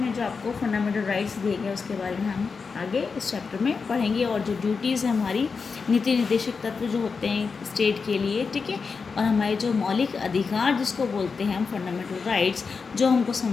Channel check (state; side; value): quieter; right; 5.1 dB